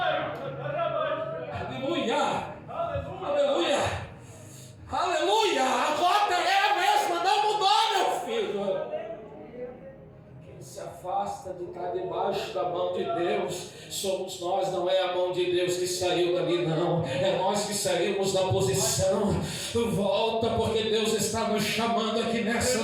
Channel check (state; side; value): identical; both; correlation 1.00